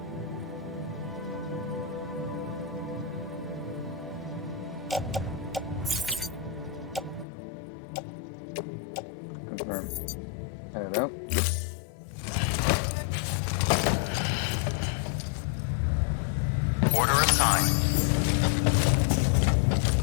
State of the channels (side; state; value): right; drops out; at 7.2 s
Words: Confirm. Head out. Order assigned.